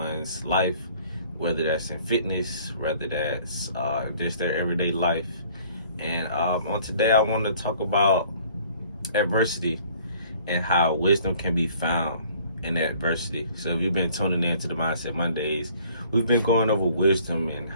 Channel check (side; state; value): both; inverted; correlation -0.55